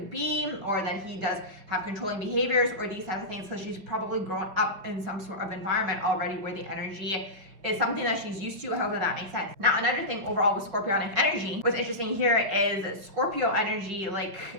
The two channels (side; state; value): left; late; 5.0 ms